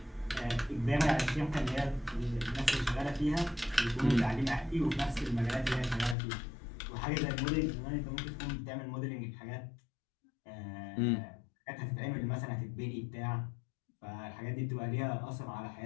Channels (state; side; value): drops out; right; at 6.2 s